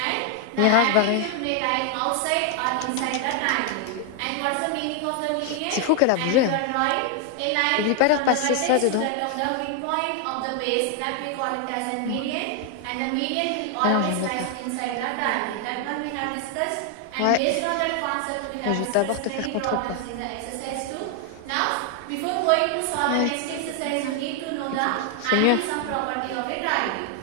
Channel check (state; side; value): different; both; correlation 0.00